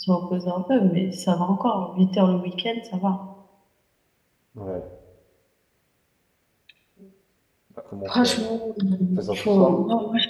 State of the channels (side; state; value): both; identical; correlation 1.00